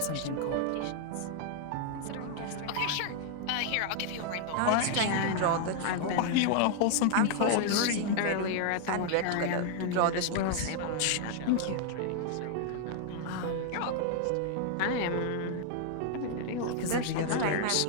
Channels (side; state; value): both; different; correlation 0.00